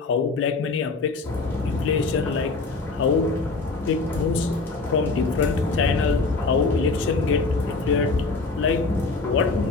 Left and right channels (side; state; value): right; quieter; 3.9 dB